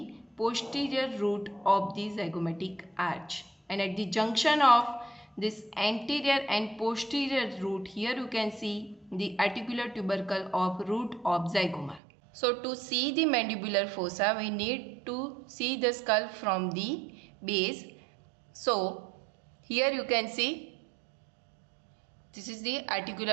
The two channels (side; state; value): left; drops out; at 12.0 s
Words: posterior root of the zygomatic arch. And at the junction of this anterior and posterior root, here you can see the articular tubercle of root of zygoma. So to see the mandibular fossa, we need to see the skull from the base. So here you can see this is the